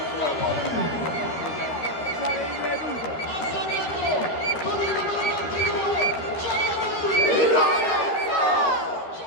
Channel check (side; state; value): right; late; 12 ms